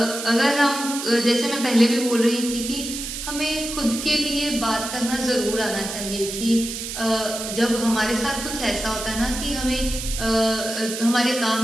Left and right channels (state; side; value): noise; right; hiss, 6 dB below the sound